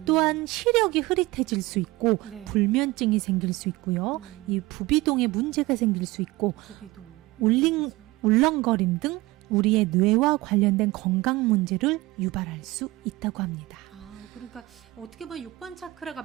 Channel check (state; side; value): quieter; left; 20.2 dB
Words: 또한 시력이 흐릿해질 수 있고 네. 불면증이 생길 수 있고요. 이 부비동에 문제가 생길 수 있고 부비동, 울렁거림 등 우리의 뇌와 관련된 건강 문제를 유발할 수 있다고 합니다. 그러니까 어떻게 보면 6번 차크라가